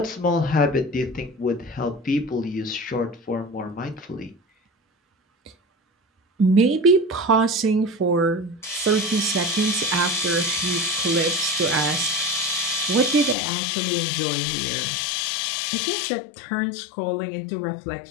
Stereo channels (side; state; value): right; drops out; at 13.4 s